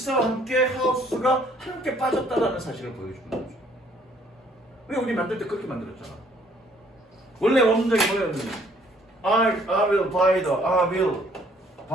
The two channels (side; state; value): both; normal; correlation 0.62